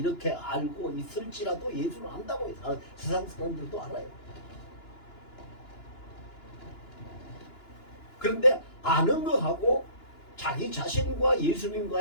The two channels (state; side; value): late; right; 2.9 ms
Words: 알고 있을지라도 예수를 안다고 세상 사람들도 알아요. 그런데 아는 거하고 자기 자신과